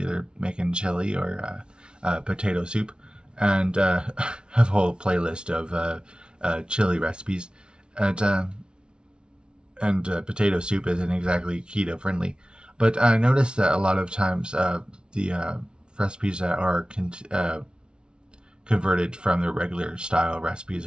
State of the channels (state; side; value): late; left; 0.055 ms